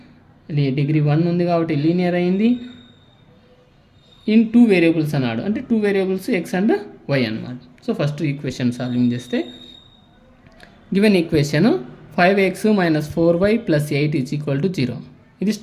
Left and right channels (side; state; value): both; identical; correlation 1.00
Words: డిగ్రీ 1 ఉంది కాబట్టి లీనియర్ అయింది. ఇన్ 2 వేరియబుల్స్ అన్నాడు, అంటే 2 వేరియబుల్స్ ఎక్స్ అండ్ వై అన్నమాట. సో ఫస్ట్ ఈక్వేషన్ సాల్వింగ్ చేస్తే గివెన్ ఈక్వేషన్ 5x - 4y + 8 = 0. ఇది